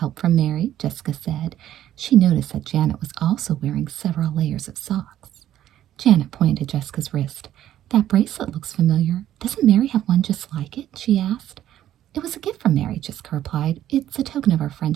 from Mary," Jessica said. She noticed that Janet was also wearing several layers of socks. Janet pointed to Jessica's wrist. "That bracelet looks familiar. Doesn't Mary have one just like it?" she asked. "It was a gift from Mary," Jessica replied. "It's a token of our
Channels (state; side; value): quieter; left; 12.1 dB